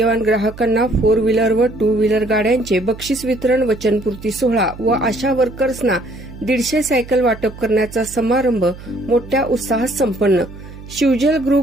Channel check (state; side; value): noise; right; hum, 16 dB below the sound